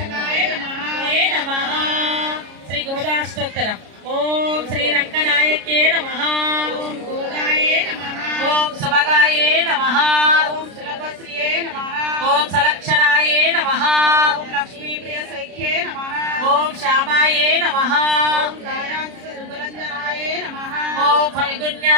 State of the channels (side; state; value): left; late; 33 ms